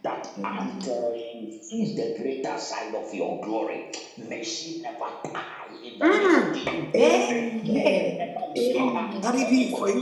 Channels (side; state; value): both; identical; correlation 1.00